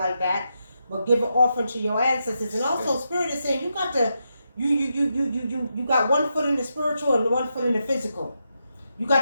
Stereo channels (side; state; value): both; inverted; correlation -0.84